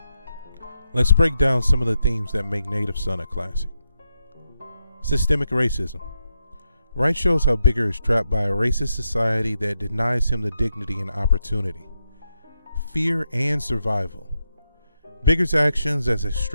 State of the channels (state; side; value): inverted; both; correlation -0.84